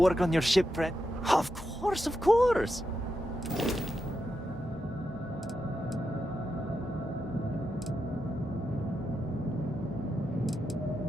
on your ship, friend. Of course, of course.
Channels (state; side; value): normal; both; correlation 0.86